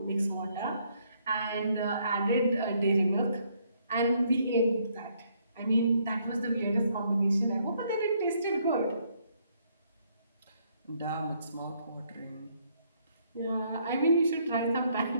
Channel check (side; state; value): both; inverted; correlation -0.70